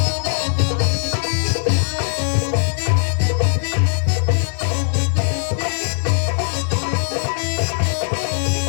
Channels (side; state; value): right; silent; 57 dB below the other